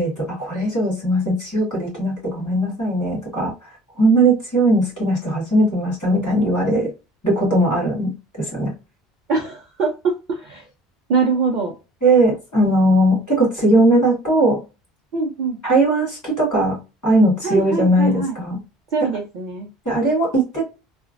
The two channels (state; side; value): normal; both; correlation 0.50